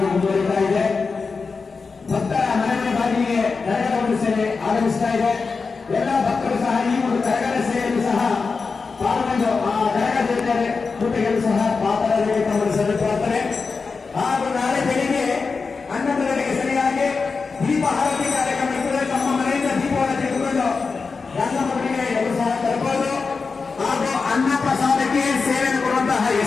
ಮುಂದುವರಿತಾ ಇದೆ. ಭಕ್ತರ ಮನೆ ಬಾಗಿಲಿಗೆ ಕರಗದ ಒಂದು ಸೇವೆ ಆಗಮಿಸ್ತಾ ಇದೆ. ಎಲ್ಲ ಭಕ್ತರು ಸಹ ಈ ಒಂದು ಕರಗದ ಸೇವೆಯನ್ನು ಸಹ ಪಾಲ್ಗೊಂಡು ಆ ಕರಗದ ಕೃತಿಗಳು ಸಹ ಪಾತ್ರರಿಗೆ ಗಮನಿಸಲು ಪ್ರಾರ್ಥನೆ. ಹಾಗೂ ನಾಳೆ ಬೆಳಿಗ್ಗೆ 11 ಗಂಟೆಗೆ ಸರಿಯಾಗಿ ದೀಪ ಆರತಿ ಕಾರ್ಯಕ್ರಮ ಇರುತ್ತದೆ. ತಮ್ಮ ಮನೆಯಿಂದ ದೀಪವನ್ನು ತೆಗೆದುಕೊಂಡು ರಂಗಮಠಕ್ಕೆ ಎಲ್ಲರೂ ಸಹ ತರಬಹುದು. ಹಾಗೂ ಅನ್ನ ಪ್ರಸಾದಕ್ಕೆ ಸೇವೆಯನ್ನು ಕೊಡುವಂತಹ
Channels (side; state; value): right; quieter; 4.7 dB